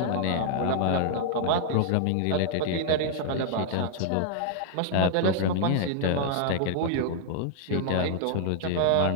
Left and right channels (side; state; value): both; different; correlation 0.00